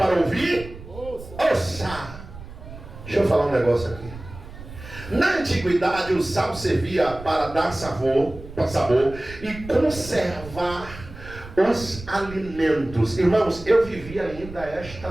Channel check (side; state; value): right; noise; rumble, 15 dB below the sound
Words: ouvir, ouça. Deixa eu falar um negócio aqui. Na antiguidade, o sal servia para dar sabor e conservar os alimentos. Irmãos, eu vivi ainda esta